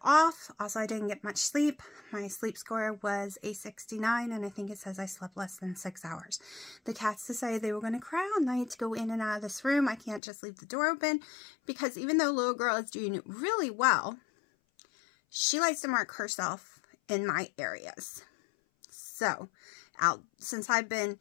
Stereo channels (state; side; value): drops out; right; at 10.2 s